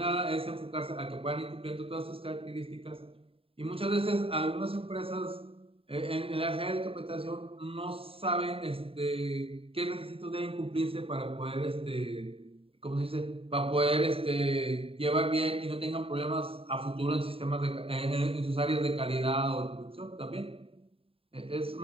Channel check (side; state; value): left; late; 0.27 ms